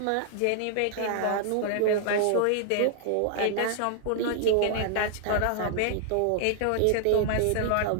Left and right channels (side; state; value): both; different; correlation -0.01